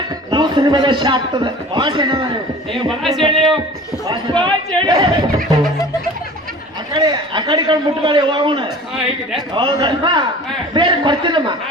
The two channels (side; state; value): both; normal; correlation 0.42